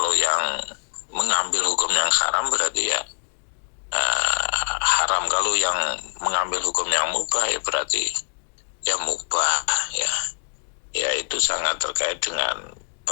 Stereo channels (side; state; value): right; silent; digital silence